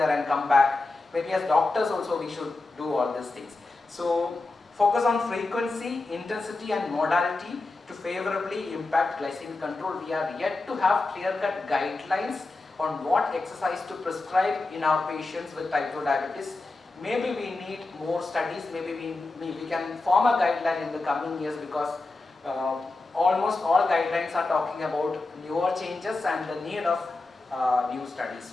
and come back. Maybe as doctors also we should do all these things. So focus on frequency, intensity and modality to favorably impact glycemic control. We are yet to have clear-cut guidelines on what exercise to prescribe in our patients with type 2 diabetes. Maybe we need more studies, maybe we can form a guideline in the coming years, because almost all guidelines are talking about newer changes and the need of new studies.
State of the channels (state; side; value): quieter; right; 3.3 dB